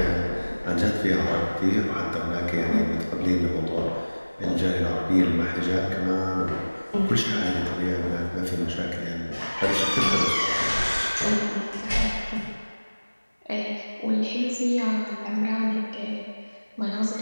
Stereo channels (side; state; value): both; inverted; correlation -1.00